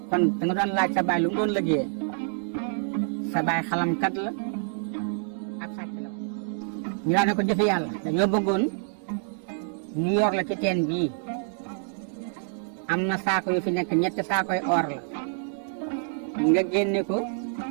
kon da nga doon laaj sa baay lu mu doon liggéeyee sa baay xalamkat la ab sàcc la woon ñu daan ne ko jëfe yàlla dañoo bëggoon ñu yor la ci teen bii am na saako yu fi nekk ñetti saakoy or la nga génne ko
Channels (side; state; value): left; silent; digital silence